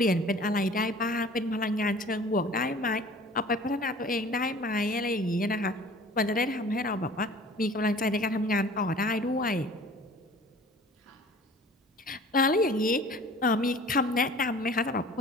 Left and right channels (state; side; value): normal; both; correlation 0.46